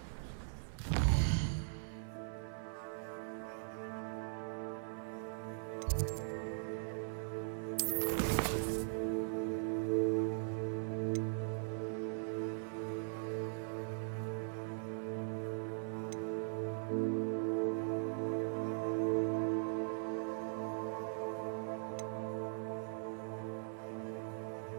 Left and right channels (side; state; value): left; silent; 51 dB below the other